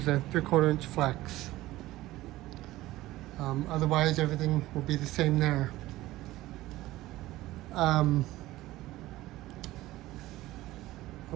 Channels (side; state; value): left; quieter; 17.0 dB